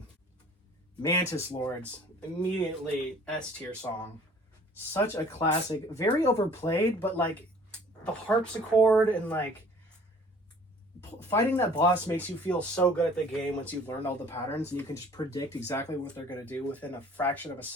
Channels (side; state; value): both; normal; correlation 0.52